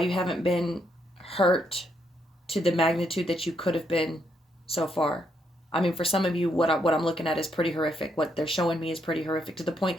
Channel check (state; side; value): normal; both; correlation 0.76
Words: you haven't been hurt to the magnitude that you could have been so far. I mean, for some of you, what I'm looking at is pretty horrific. What they're showing me is pretty horrific to the